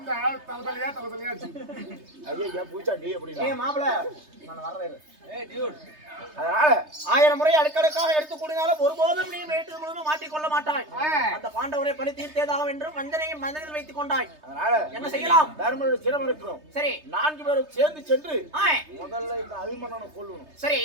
தலைவலியா ஐயா பூச்சாண்டி எப்படி மாப்பிள நான் வர்றேன். அதனால 1000 முறை அடுக்கடுக்காக எடுத்து கூடினாலும் ஒருபோதும் நீ மேட்டு முழுவதும் மாட்டிக்கொள்ள மாட்டாய். அந்த பாண்டவரை பழி தீர்த்தேதாக என்று வஞ்சனையை மனதில் வைத்துக் கொண்டாய். அதனால என்ன செய்யலாம்? தர்மனுடைய சிரம் இருக்கிறோம். சரி 4 பேரும் சேர்ந்து சென்று முதல்ல இந்த அபிமன்னனை கொல்லணும். சரி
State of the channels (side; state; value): left; late; 3.3 ms